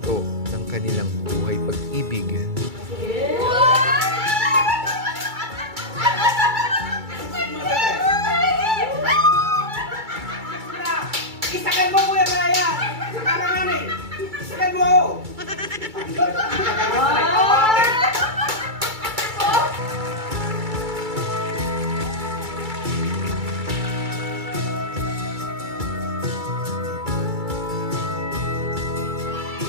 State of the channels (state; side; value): late; left; 2.3 ms